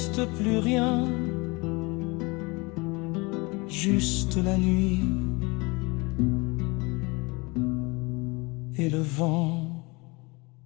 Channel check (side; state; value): right; quieter; 26.1 dB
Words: plus rien, juste la nuit et le vent.